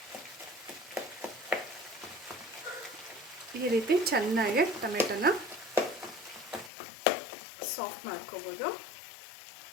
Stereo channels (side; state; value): right; drops out; at 6.7 s